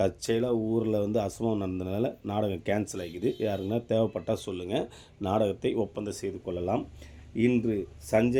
தற்செயலாக ஊரில் அசம்பவம் நடந்ததுனால நாடகம் கேன்சல் ஆகிக்குது. யாருக்குன்னா தேவைப்பட்டால் சொல்லுங்கள், நாடகத்தை ஒப்பந்தம் செய்து கொள்ளலாம். இன்று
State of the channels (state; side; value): identical; both; correlation 1.00